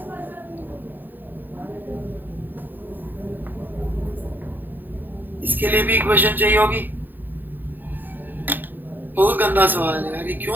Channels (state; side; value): late; left; 0.089 ms